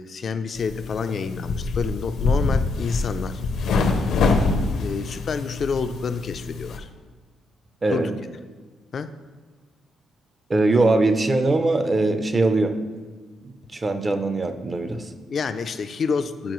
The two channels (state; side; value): normal; both; correlation 0.81